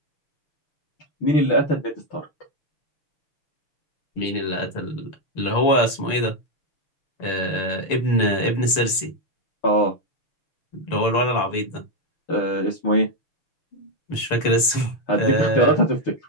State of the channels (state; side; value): late; right; 6.8 ms